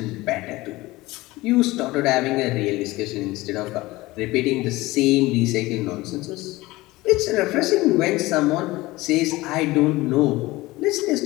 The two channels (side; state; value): right; quieter; 19.7 dB